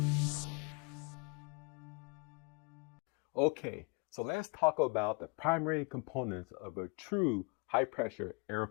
Okay, so let's talk about the primary components of a true high pressure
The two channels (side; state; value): right; quieter; 32.2 dB